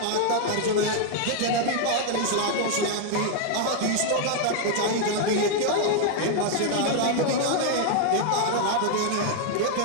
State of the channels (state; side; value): different; both; correlation 0.00